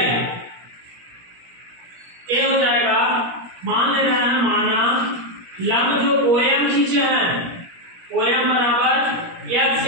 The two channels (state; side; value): late; left; 17 ms